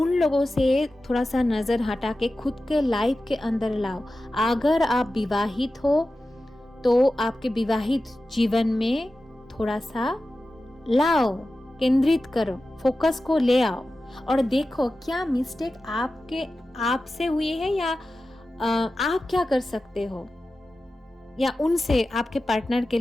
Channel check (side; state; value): both; normal; correlation 0.94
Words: लोगों से थोड़ा सा नज़र हटा के खुद के लाइफ के अंदर लाओ। अगर आप विवाहित हो तो आपके विवाहित जीवन में थोड़ा सा लाओ, केंद्रित करो, फोकस को ले आओ और देखो क्या मिस्टेक आपसे हुई है या आप क्या कर सकते हो। या उनसे आपके पार्टनर के